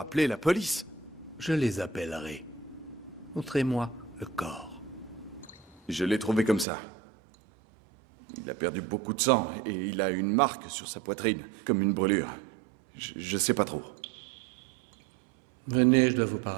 la police. Je les appellerai. Montrez-moi le corps. Je l'ai trouvé comme ça. Il a perdu beaucoup de sang et il a une marque sur sa poitrine, comme une brûlure. Je sais pas trop. Venez, je dois vous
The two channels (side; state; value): left; drops out; at 6.7 s